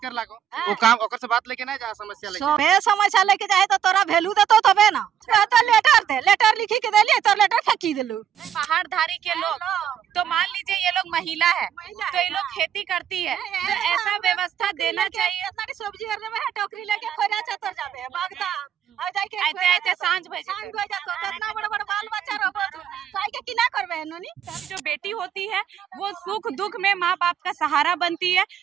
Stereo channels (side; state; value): left; quieter; 9.2 dB